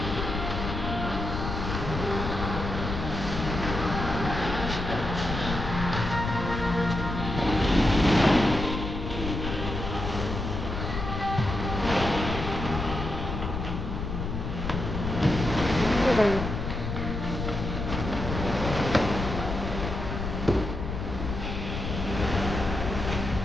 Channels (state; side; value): noise; left; rumble, 4 dB below the sound